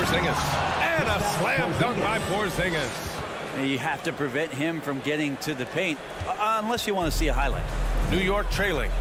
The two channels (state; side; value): identical; both; correlation 1.00